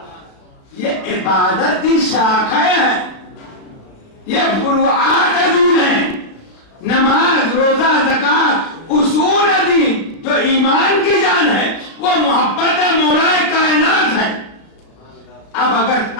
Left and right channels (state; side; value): late; right; 35 ms